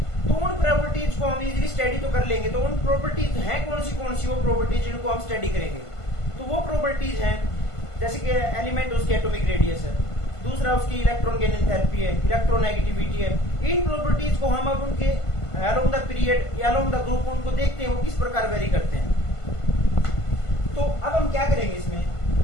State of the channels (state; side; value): late; right; 1.5 ms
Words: तो उन प्रॉपर्टीज को हम इजीली स्टडी तो कर लेंगे, तो उन प्रॉपर्टीज हैं कौन सी वो प्रॉपर्टीज जिनको हम स्टडी करेंगे। तो वो प्रॉपर्टीज हैं जैसे कि एलिमेंट उसकी एटॉमिक रेडियस है, दूसरा उसकी इलेक्ट्रॉन गेन एंथैल्पी है, इलेक्ट्रोनेगेटिविटी है। इन प्रॉपर्टीज को हम अब उनके अलोंग द पीरियड या अलोंग द ग्रुप उनको देखते हैं वो किस प्रकार वेरी करते हैं। तो अब हम क्या करेंगे इसमें,